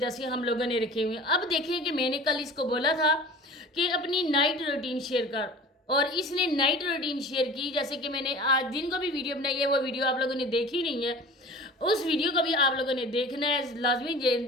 से हम लोगों ने रखे हुए हैं। अब देखें कि मैंने कल इसको बोला था कि अपनी नाइट रूटीन शेयर कर, और इसने नाइट रूटीन शेयर की। जैसे कि मैंने आज दिन को भी वीडियो बनाई है, वो वीडियो आप लोगों ने देखी नहीं है, उस वीडियो को भी आप लोगों ने देखना है,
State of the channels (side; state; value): both; normal; correlation 0.40